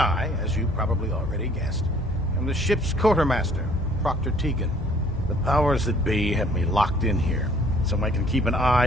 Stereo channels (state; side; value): normal; both; correlation 0.57